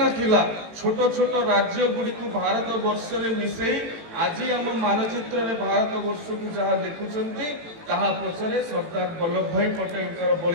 थिला छोट छोट राज्य गुड़ी को भारत वर्ष में मिसई आज आम मानचित्र में भारत वर्ष को जहाँ देखुंट ताहा पछरे सरदार वल्लभ भाई पटेल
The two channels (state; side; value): late; left; 18 ms